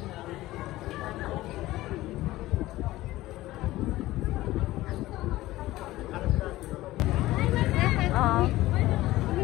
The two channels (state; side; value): quieter; right; 17.0 dB